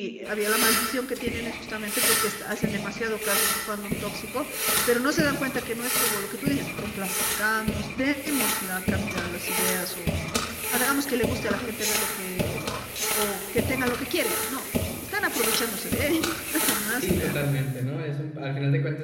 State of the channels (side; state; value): both; identical; correlation 1.00